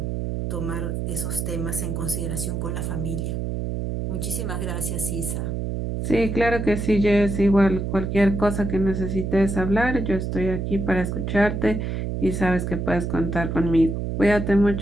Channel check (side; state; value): right; noise; hum, 3 dB below the sound